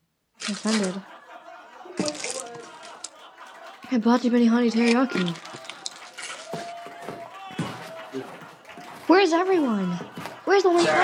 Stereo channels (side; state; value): both; identical; correlation 1.00